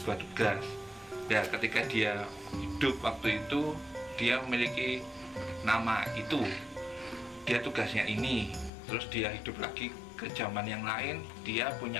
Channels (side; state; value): right; drops out; at 8.7 s